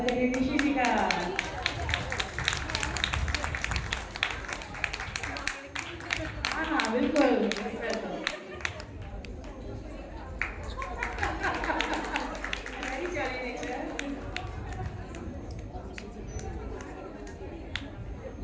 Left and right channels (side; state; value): both; identical; correlation 1.00